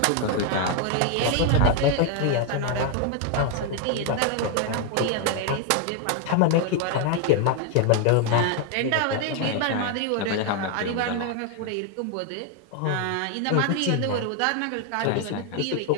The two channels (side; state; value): both; different; correlation 0.01